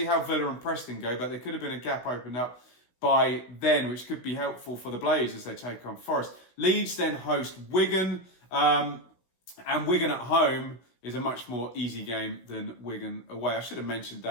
how Villa and Preston go, but there could have been a gap opened up by then, which could be helpful for the Blades as they take on Forest. Leeds then host Wigan, and Wigan at home is a much more easy game than Wigan away. I should have mentioned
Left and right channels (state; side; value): late; right; 16 ms